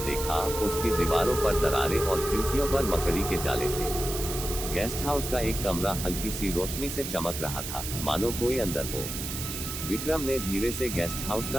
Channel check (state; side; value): noise; right; hiss, 6 dB below the sound